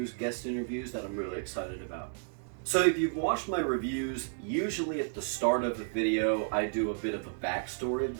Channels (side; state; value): left; silent; digital silence